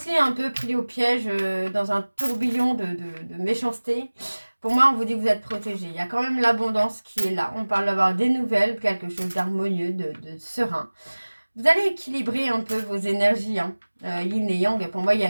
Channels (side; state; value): both; inverted; correlation -1.00